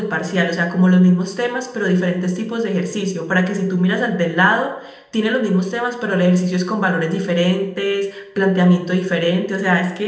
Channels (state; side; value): identical; both; correlation 1.00